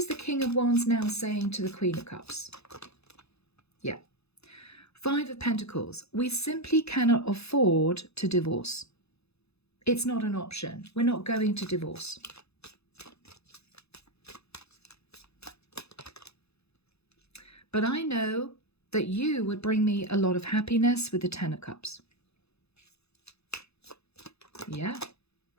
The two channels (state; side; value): late; right; 0.79 ms